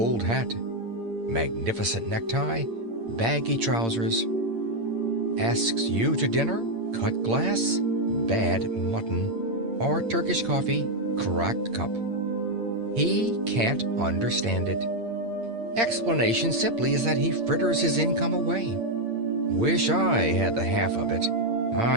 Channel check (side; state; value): left; late; 8.8 ms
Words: hat. Magnificent necktie, baggy trousers. Asks you to dinner, cut glass, bad mutton, or Turkish coffee, cracked cup. He can't understand it. Explanation simply is that he fritters his income away. Wish I had the half of it.